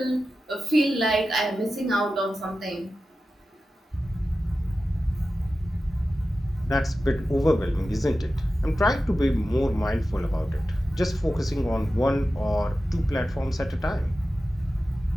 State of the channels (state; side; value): normal; both; correlation 0.93